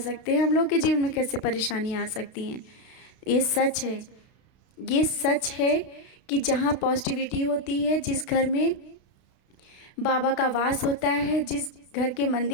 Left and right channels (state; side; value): late; right; 32 ms